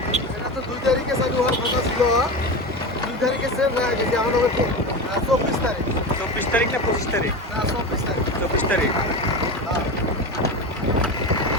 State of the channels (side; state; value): both; normal; correlation 0.24